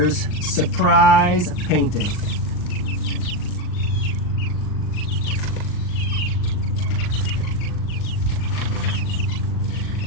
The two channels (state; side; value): late; right; 39 ms